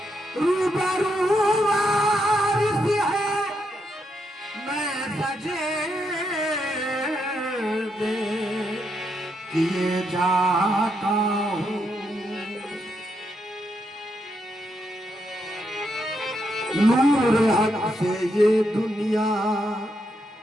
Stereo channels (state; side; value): normal; both; correlation 0.80